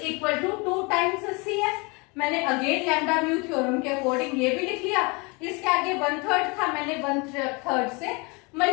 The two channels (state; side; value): quieter; right; 28.9 dB